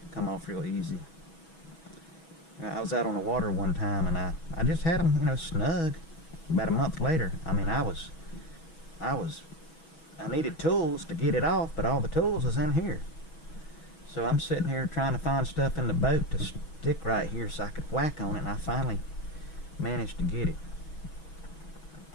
come off real easy. I was out on the water one time, and I just had them, you know, snug. About a month later, I mean, I needed tools to get it off, but all the tools was in here. So I'm sitting here trying to find stuff in the boat to stick right here so I could whack on it, and I finally managed to get it.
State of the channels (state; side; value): late; right; 6.2 ms